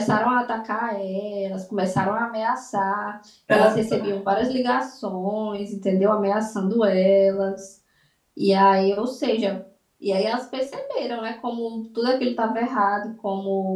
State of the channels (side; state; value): both; identical; correlation 1.00